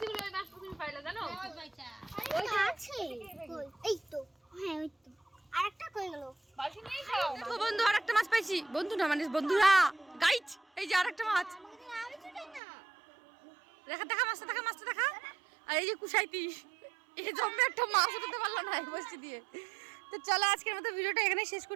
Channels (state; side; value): drops out; left; at 12.6 s